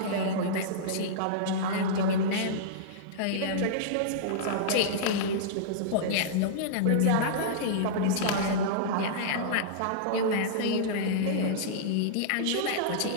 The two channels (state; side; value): different; both; correlation -0.03